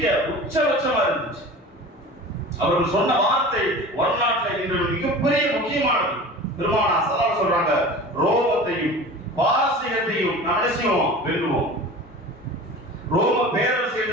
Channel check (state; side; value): normal; both; correlation 0.37